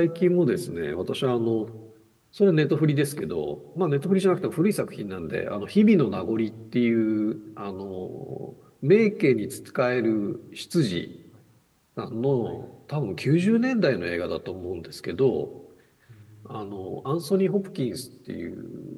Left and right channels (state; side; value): identical; both; correlation 1.00